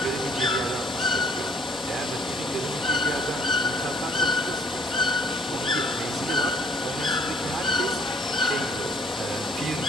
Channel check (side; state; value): both; normal; correlation 0.60